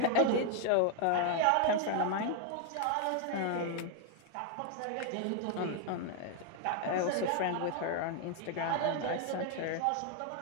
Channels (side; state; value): both; different; correlation 0.00